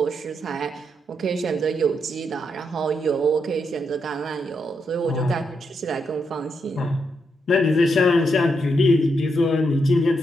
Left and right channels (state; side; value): normal; both; correlation 0.81